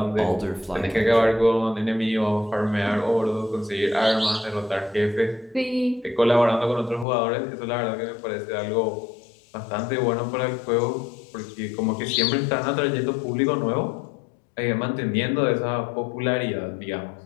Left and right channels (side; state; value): right; drops out; at 7.1 s